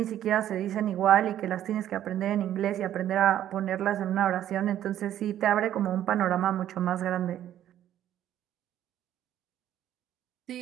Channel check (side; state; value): left; quieter; 11.6 dB